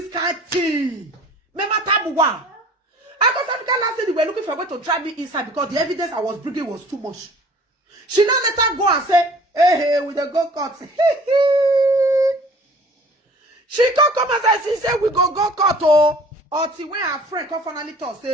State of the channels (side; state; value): both; normal; correlation 0.49